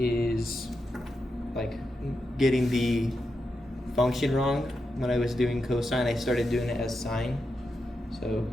getting the function wrong. When I was doing cosine, I started doing it as sine. So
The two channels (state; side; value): normal; both; correlation 0.87